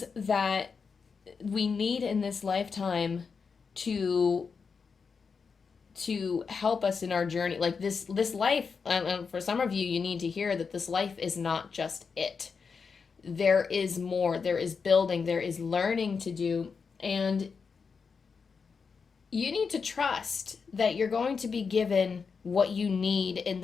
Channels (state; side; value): quieter; right; 5.5 dB